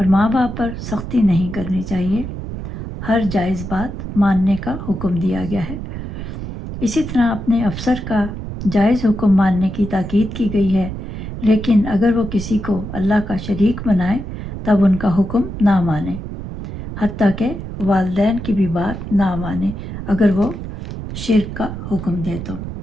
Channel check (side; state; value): right; noise; rumble, 8 dB below the sound